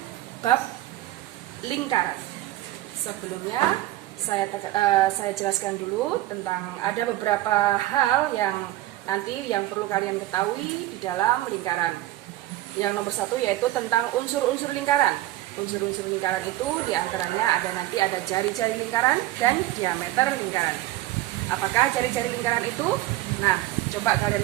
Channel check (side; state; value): left; quieter; 15.9 dB